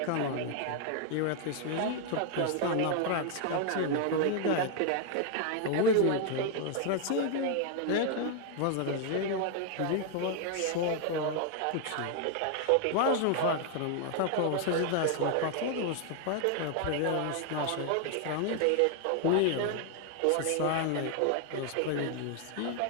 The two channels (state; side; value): different; both; correlation 0.01